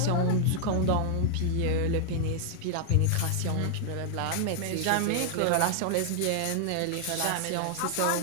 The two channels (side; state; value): both; different; correlation 0.00